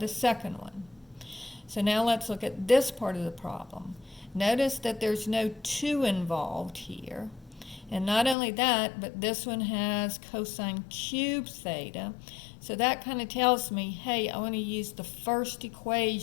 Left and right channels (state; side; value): drops out; right; at 8.3 s